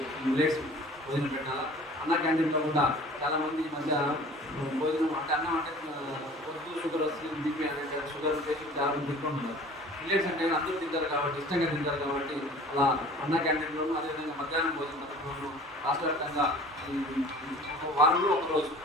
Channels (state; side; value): normal; both; correlation 0.45